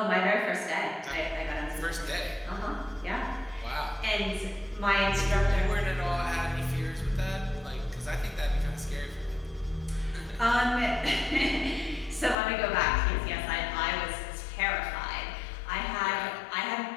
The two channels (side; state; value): right; drops out; at 12.4 s